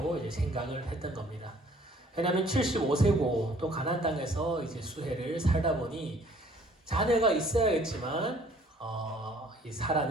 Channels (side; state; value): both; normal; correlation 0.57